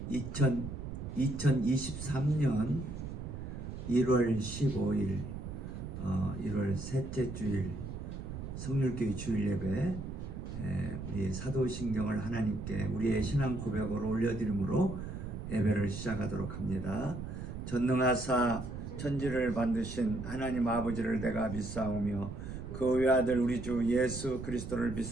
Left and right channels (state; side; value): noise; right; rumble, 7 dB below the sound